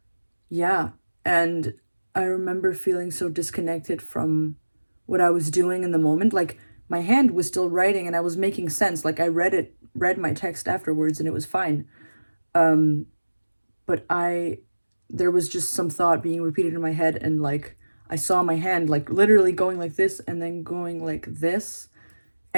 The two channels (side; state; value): both; inverted; correlation -1.00